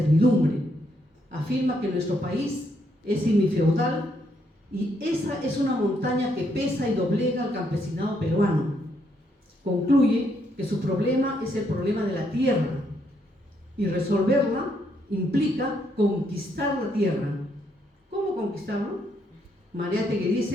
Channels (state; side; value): normal; both; correlation 0.74